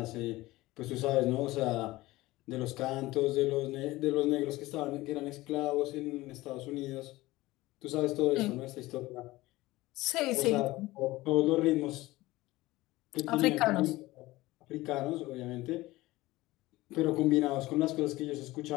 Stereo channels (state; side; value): quieter; right; 18.7 dB